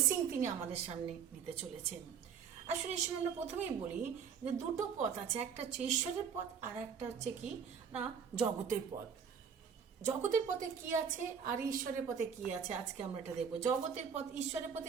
তিনি আমাদের সামনে নিতে চলেছেন। আসলে এই সময় আমরা প্রথমেই বলি যে দুটো পথ আছে, একটা হচ্ছে ঈশ্বরের পথ আর একটা হচ্ছে কি না জগতের পথ। জগতের পথে কি আছে আর ঈশ্বরের পথে কি আছে, আজকে আমরা এটা দেখবো। জগতের পথ, ঈশ্বরের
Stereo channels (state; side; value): quieter; left; 7.0 dB